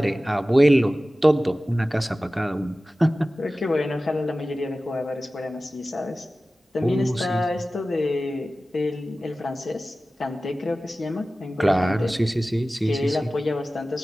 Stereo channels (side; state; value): both; normal; correlation 0.96